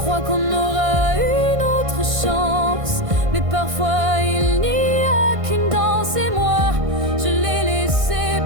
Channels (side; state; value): left; late; 1.6 ms